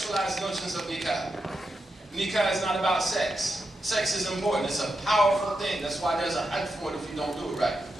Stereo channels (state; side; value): normal; both; correlation 0.87